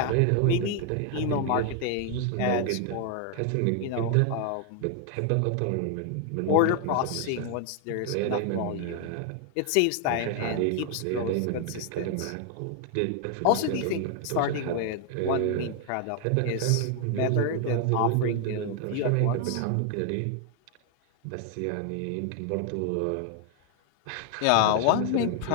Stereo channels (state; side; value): different; both; correlation 0.00